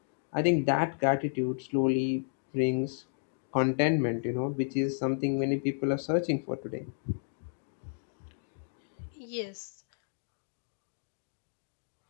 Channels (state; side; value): silent; right; digital silence